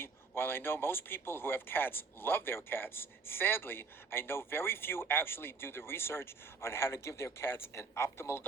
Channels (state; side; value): quieter; left; 4.6 dB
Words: while I know most people who have cats love their cats, sadly, I know very few actually do the research on how to give their cats an optimal